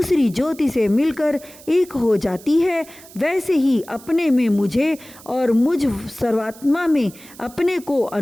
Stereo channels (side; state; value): right; noise; hiss, 21 dB below the sound